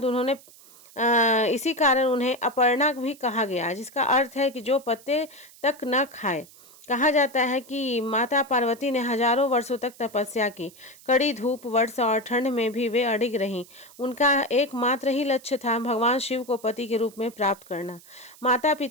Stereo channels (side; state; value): right; noise; hiss, 23 dB below the sound